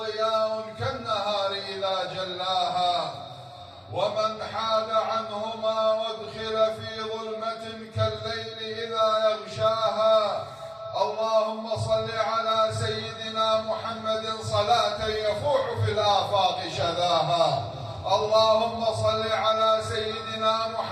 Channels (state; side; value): identical; both; correlation 1.00